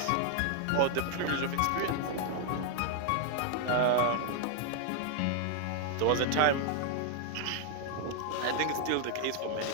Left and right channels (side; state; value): both; different; correlation 0.00